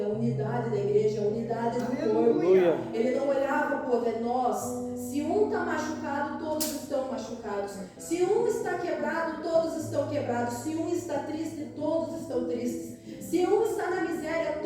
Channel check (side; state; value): both; identical; correlation 1.00